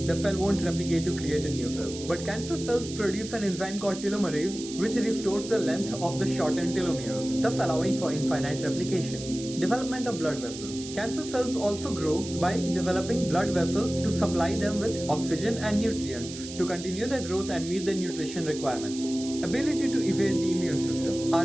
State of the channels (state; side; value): noise; right; hiss, 12 dB below the sound